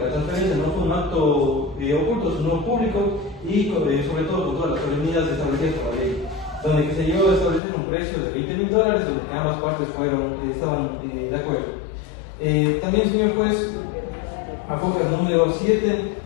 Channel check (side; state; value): right; drops out; at 7.6 s